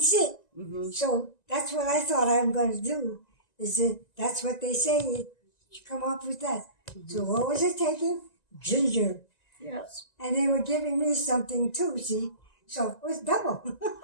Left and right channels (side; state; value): right; late; 1.9 ms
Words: sick. So that's what I thought I'm going to do. That's what they say. You come up with that. So what was it taking? Ginger. Yes. And they were giving me something too, see? So it was double.